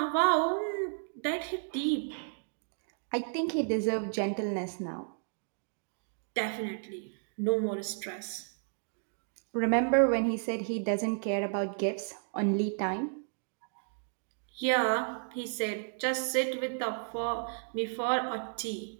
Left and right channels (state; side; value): silent; left; digital silence